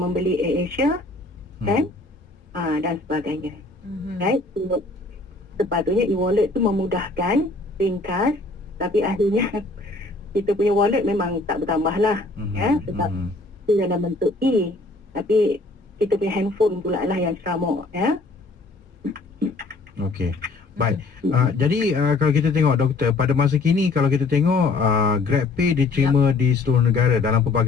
AirAsia kan, dan sebagainya. Right? So, sepatutnya e-wallet tu memudahkan, ringkas, tapi akhirnya kita punya wallet memang tak bertambah lah ya, sebab itu dalam bentuk E, tapi kita punya handphone pula lah yang ceramuk ya. Okey. Baik. Jadi kalau kita tengok, doktor, pada masa kini kalau kita tengok GrabPay diterima di seluruh negara dalam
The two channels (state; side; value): quieter; right; 3.3 dB